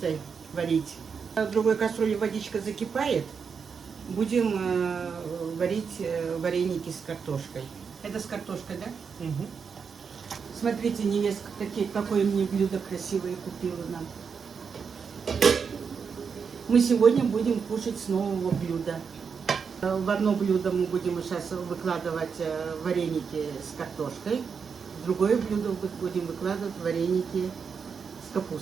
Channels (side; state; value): left; quieter; 6.0 dB